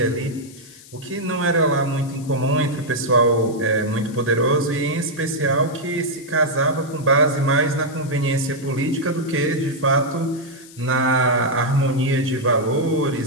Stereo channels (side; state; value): left; noise; hiss, 21 dB below the sound